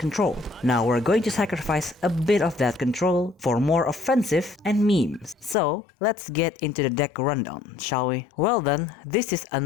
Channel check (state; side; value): drops out; right; at 5.6 s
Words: Now we're going to sacrifice a bit of that control for more offensive and memes. So let's get into the deck rundown, shall we? Well then, this is